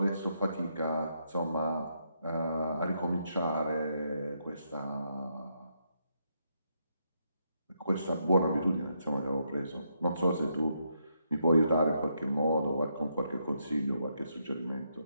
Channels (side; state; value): both; inverted; correlation -0.79